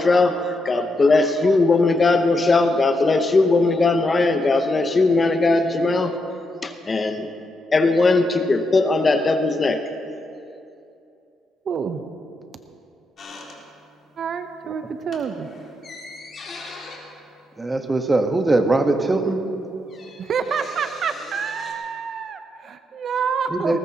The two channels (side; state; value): both; normal; correlation 0.82